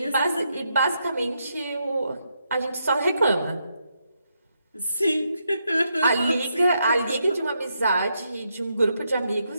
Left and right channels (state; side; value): inverted; both; correlation -0.80